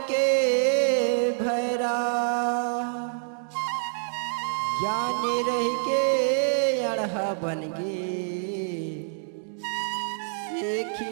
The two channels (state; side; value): silent; left; digital silence